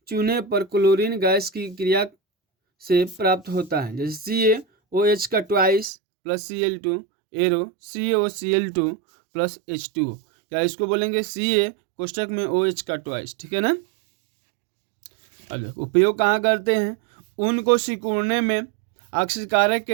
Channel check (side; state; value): left; drops out; at 5.9 s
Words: चूने पर क्लोरीन गैस की क्रिया से प्राप्त होता है। जैसे CaOH का twice plus Cl2 arrow CaOCl2 plus H2O, या इसको बोलेंगे Ca कोष्टक में OH का ट्वाइस, ठीक है ना। अब उपयोग कहाँ करते हैं, ऊन को सिकुड़ने में ऑक्सीकारक